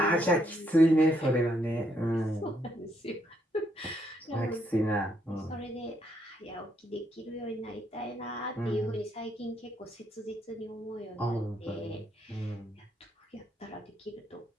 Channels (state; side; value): normal; both; correlation 0.74